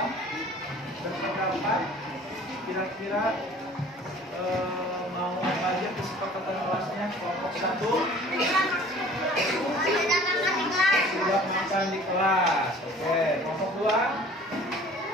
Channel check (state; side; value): normal; both; correlation 0.49